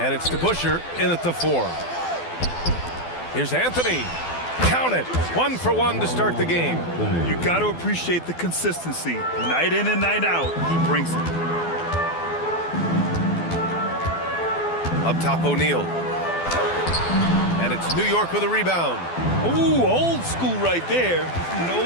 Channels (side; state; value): right; late; 12 ms